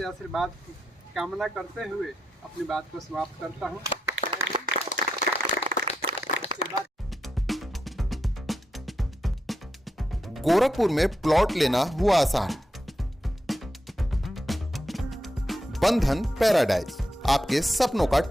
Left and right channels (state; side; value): normal; both; correlation 0.85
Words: आशीर्वाद की कामना करते हुए अपनी बात को समाप्त करता हूँ। गोरखपुर में प्लॉट लेना हुआ आसान। बंधन पैराडाइज, आपके सपनों का